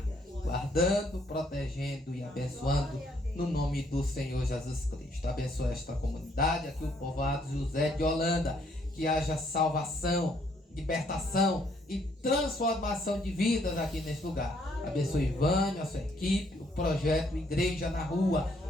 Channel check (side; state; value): both; normal; correlation 0.68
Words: guardando, protegendo e abençoando no nome do Senhor Jesus Cristo. Abençoa esta comunidade, aqui o povoado José de Holanda, que haja salvação, libertação e transformação de vidas aqui neste lugar. Abençoe Ivânio, a sua equipe, o projeto Igreja na Rua.